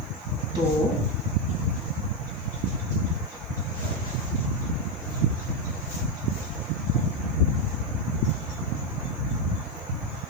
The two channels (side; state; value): right; noise; hiss, 27 dB below the sound